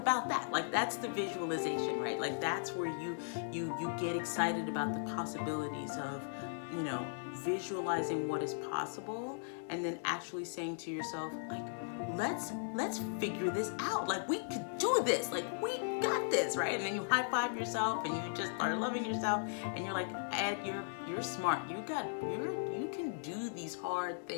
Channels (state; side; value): silent; right; 53 dB below the other